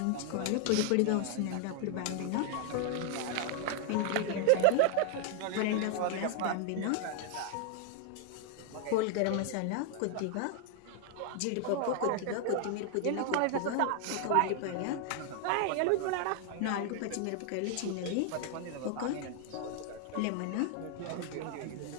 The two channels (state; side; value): different; both; correlation 0.00